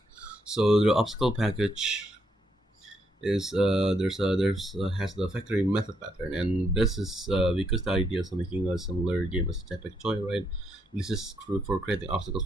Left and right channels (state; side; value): normal; both; correlation 0.76